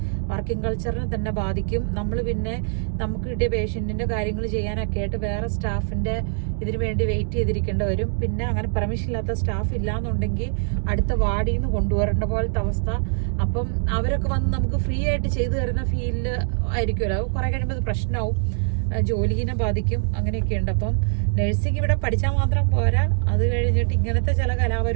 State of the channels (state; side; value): silent; left; digital silence